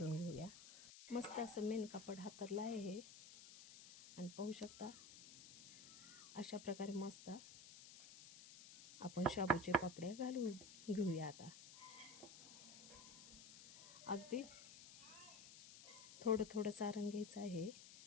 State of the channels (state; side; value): noise; left; hiss, 15 dB below the sound